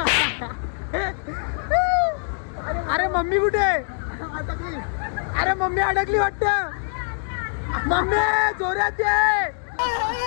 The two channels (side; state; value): right; silent; 59 dB below the other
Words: अरे मम्मी कुठे अरे मम्मी अडकली वाटत मम्मी जोरात